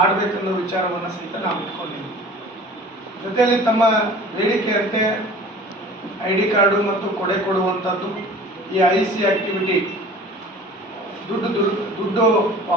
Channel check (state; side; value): normal; both; correlation 0.44